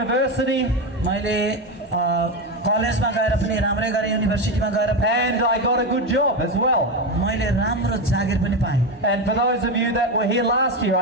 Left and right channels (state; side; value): normal; both; correlation 0.14